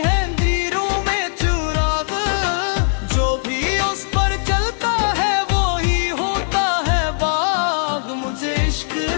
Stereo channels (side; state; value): right; silent; digital silence